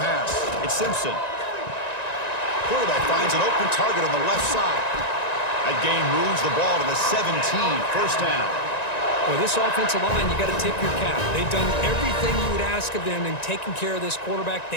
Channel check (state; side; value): late; right; 1.9 ms